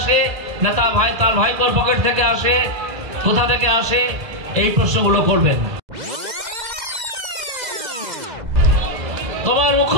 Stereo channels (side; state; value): left; late; 2.0 ms